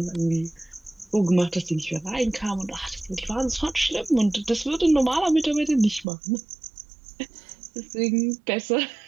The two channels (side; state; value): left; drops out; at 6.1 s